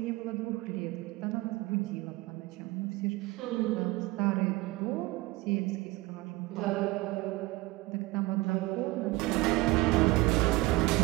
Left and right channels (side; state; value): left; quieter; 20.6 dB